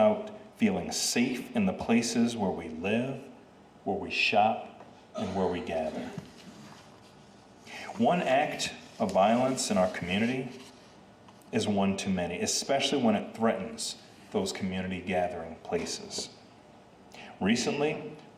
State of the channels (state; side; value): identical; both; correlation 1.00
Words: feeling safe in the places where we live, where we shop, and where we gather. One act of violence in our community is one too many, especially when it threatens those community gathering places. Recently,